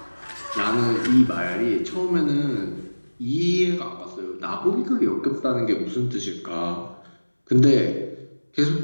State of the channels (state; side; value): inverted; both; correlation -1.00